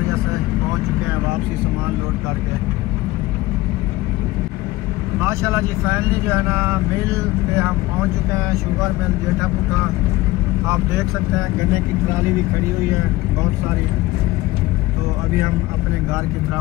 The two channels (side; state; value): right; quieter; 18.4 dB